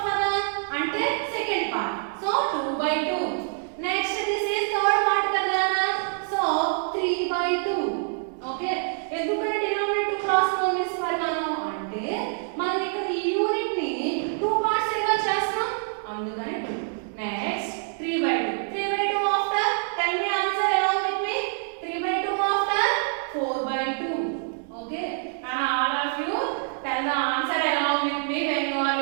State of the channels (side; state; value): left; silent; 61 dB below the other